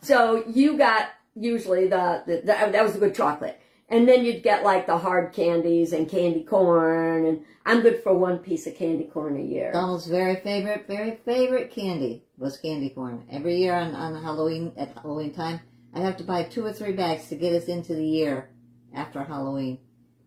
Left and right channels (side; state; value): both; identical; correlation 1.00